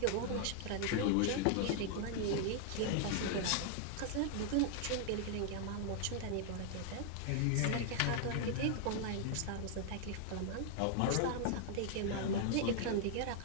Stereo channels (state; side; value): different; both; correlation 0.00